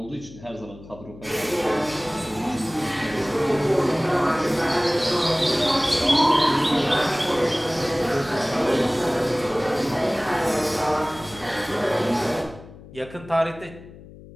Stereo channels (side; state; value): left; noise; hum, 18 dB below the sound